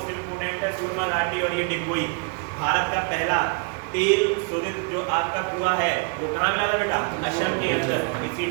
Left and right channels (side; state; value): left; quieter; 35.4 dB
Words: इम्पोर्टेंट है सूरमा घाटी और ये डिगबोई। भारत का पहला तेल शोधित जो आपका कुआं है वो कहाँ मिला था बेटा? असम के अंदर, इसी